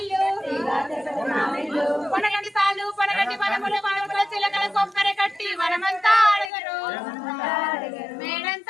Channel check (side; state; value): right; drops out; at 6.5 s